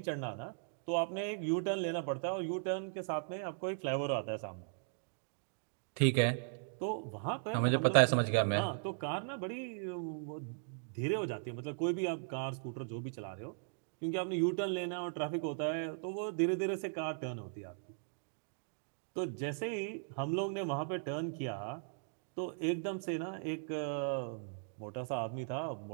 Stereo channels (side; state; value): left; silent; digital silence